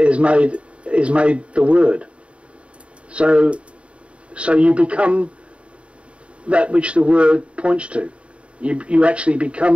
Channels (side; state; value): left; late; 0.060 ms